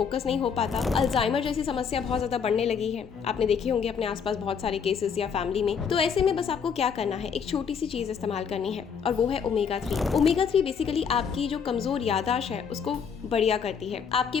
नहीं हो पाता। अल्जाइमर जैसी समस्या बहुत ज्यादा बढ़ने लगी है, आपने देखे होंगे अपने आसपास बहुत सारे केसेस या फैमिली में। तो ऐसे में बस आपको क्या करना है, एक छोटी सी चीज इस्तेमाल करनी है और वो है ओमेगा 3। ओमेगा 3 बेसिकली आपकी जो कमजोर याददाश्त है उसको बढ़िया करती है, आपके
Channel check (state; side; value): quieter; right; 6.7 dB